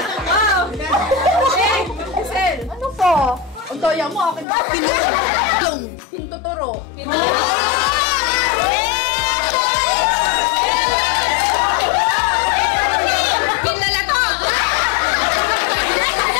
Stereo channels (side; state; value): right; drops out; at 4.5 s